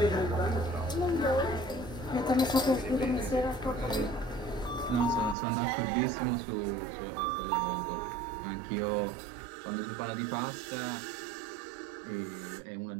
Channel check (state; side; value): drops out; left; at 5.4 s